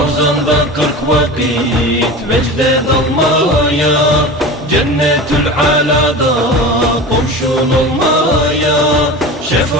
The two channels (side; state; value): both; normal; correlation 0.32